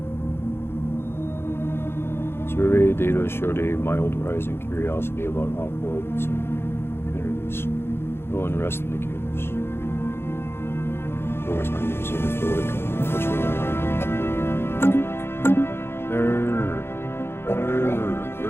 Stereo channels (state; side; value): late; right; 0.11 ms